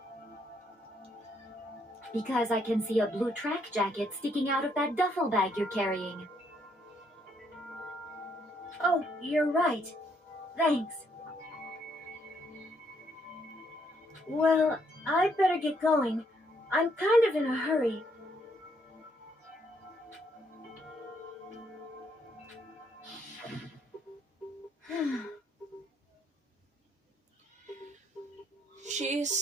Because I can see a blue track jacket sticking out of that duffel bag you're carrying. Oh, you're right. Thanks. Well, I'd better get going. I'm kind of in a hurry. She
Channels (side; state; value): both; normal; correlation 0.71